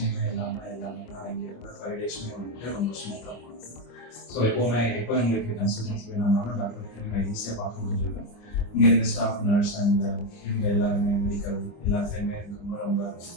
எல்லாமே தான் இங்கே இருந்த 5 டேஸுமே வந்துட்டு ரொம்ப ஸ்மூத்தாக போனது. ஸோ எப்போ எங்களுக்கு கன்சல்டன்சி வேணும்னாலும் டாக்டர் நான் ஈஸியாக பார்க்க முடிஞ்சிருக்கேன். இங்கே இருந்த ஸ்டாஃப், நர்ஸ் அண்ட் இவங்க எல்லாருமே மெடிக்கல் எல்லாத்தையுமே ரொம்ப ரொம்ப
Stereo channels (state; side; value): late; right; 25 ms